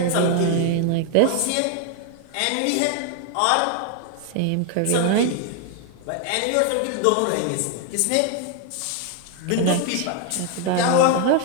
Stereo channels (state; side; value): different; both; correlation 0.00